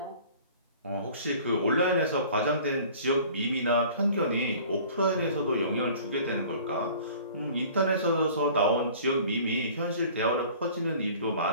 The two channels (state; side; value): inverted; both; correlation -0.47